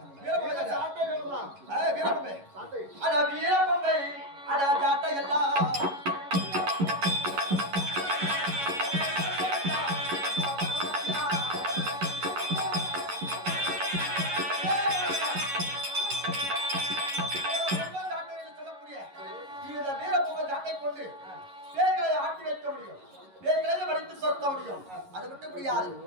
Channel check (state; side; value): late; left; 11 ms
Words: வீரப்பம்பை சாட்டை வேணுமா வீரப்பம்பை சாட்டை அட வீரப்பம்பை அட ஜாட்டை எல்லாம் சொல்லக்கூடிய இந்த வீரப்பம்பை ஜாட்டை கொண்டு பேய்களை ஆட்டி வைக்க முடியும். பேய்களை வடித்து சொத்த முடியும். அது விட்டு முடியாது.